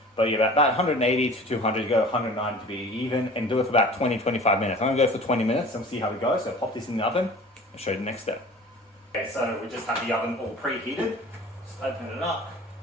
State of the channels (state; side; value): normal; both; correlation 0.43